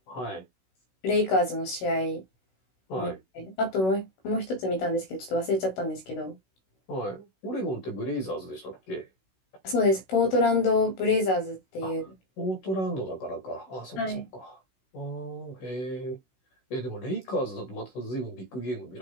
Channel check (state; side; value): late; right; 16 ms